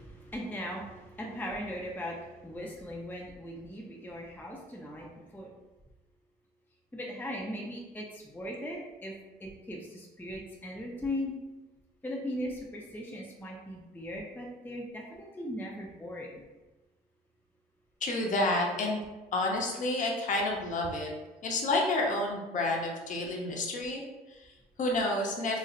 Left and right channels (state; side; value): normal; both; correlation 0.40